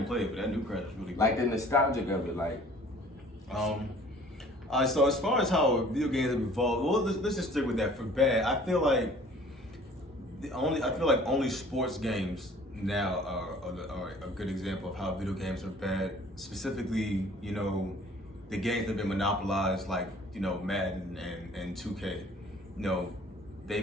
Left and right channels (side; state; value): both; normal; correlation 0.52